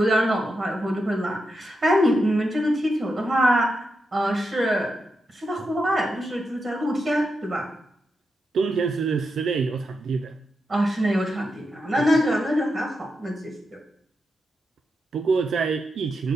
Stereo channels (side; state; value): both; normal; correlation 0.86